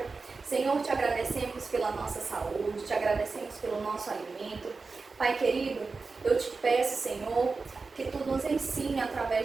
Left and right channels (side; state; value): left; quieter; 4.2 dB